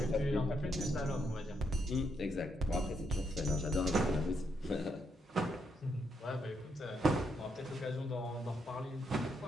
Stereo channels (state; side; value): normal; both; correlation 0.78